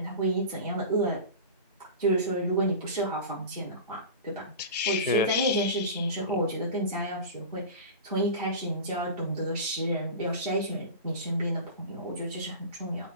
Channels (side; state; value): both; inverted; correlation -0.31